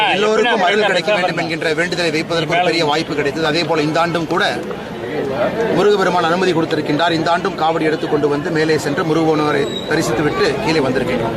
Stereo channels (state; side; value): identical; both; correlation 1.00